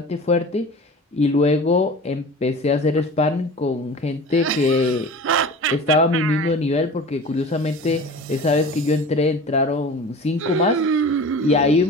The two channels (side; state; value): both; normal; correlation 0.37